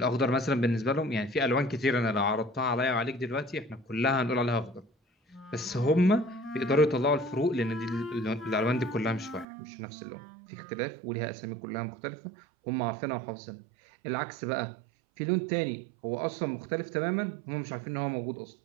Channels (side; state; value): left; drops out; at 9.5 s